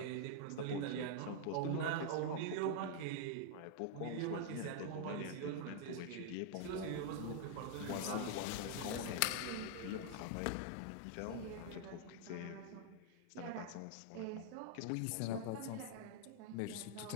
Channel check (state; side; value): different; both; correlation -0.01